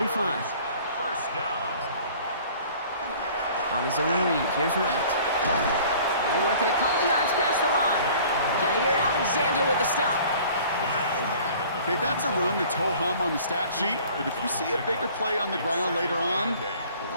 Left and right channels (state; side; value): inverted; both; correlation -0.50